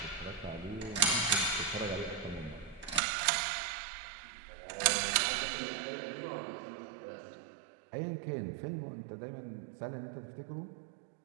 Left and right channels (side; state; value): left; drops out; at 3.0 s